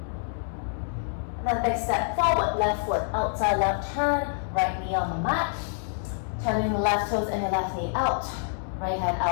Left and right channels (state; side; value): silent; right; 60 dB below the other